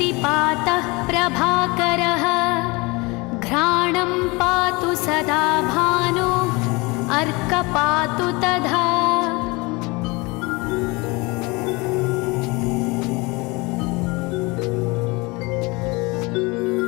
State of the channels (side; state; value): right; quieter; 25.7 dB